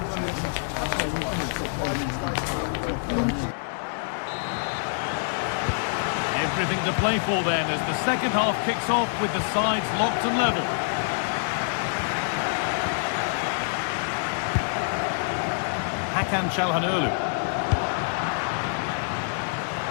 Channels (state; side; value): silent; right; 61 dB below the other